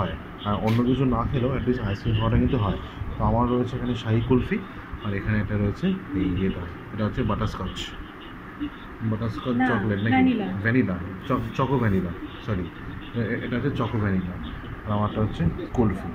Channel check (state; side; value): identical; both; correlation 1.00